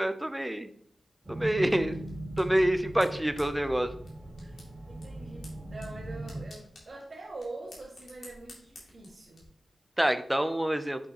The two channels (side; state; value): both; normal; correlation 0.98